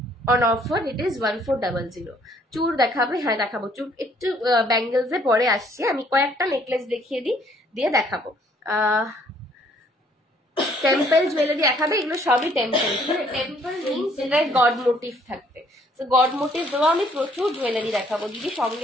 on offer it is 1400. চুর দেখাবে? হ্যাঁ দেখাবো চুর, একটু ব্যাঙ্গেলসে পরে আসছে, আমি কয়েকটা নেকলেস দেখিয়ে দিই দিয়ে দেখাবো। টেম্পল জুয়েলারি দেখাবে, এগুলো সবই টেম্পল। টেম্পল মিনস এটায় গড মোটিভ থাকবে, তো গড মোটিভ দেওয়া আমি প্রচুর জুয়েলারি দেখাবো। দিদি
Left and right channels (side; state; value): both; normal; correlation 0.63